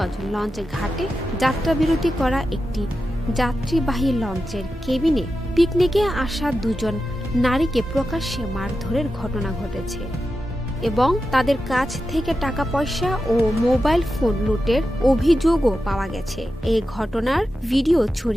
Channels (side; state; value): both; normal; correlation 0.91